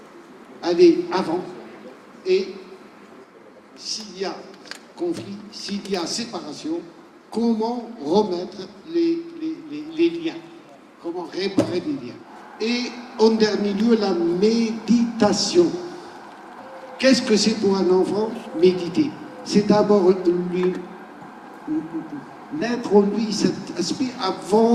aller avant, et s'il y a conflit, s'il y a séparation, comment remettre les liens, comment réparer les liens. Et en dernier lieu, la méditation. Qu'est-ce que c'est pour un enfant, méditer? C'est d'abord naître en lui cet aspect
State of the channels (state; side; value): identical; both; correlation 1.00